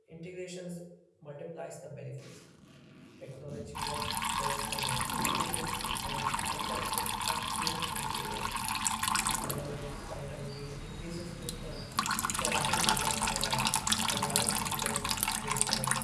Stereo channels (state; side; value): identical; both; correlation 1.00